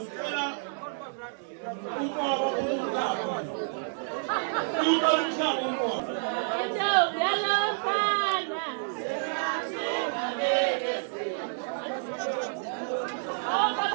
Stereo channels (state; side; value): silent; left; digital silence